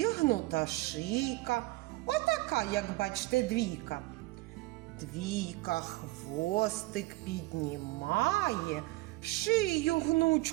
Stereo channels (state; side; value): quieter; left; 21.0 dB